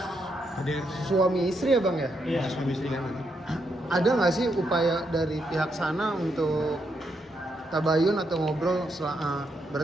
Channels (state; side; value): normal; both; correlation 0.79